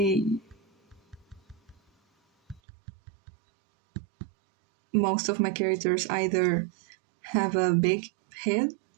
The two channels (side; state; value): left; drops out; at 2.6 s